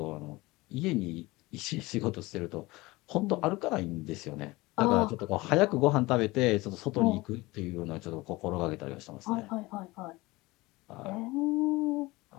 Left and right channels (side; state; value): right; quieter; 21.3 dB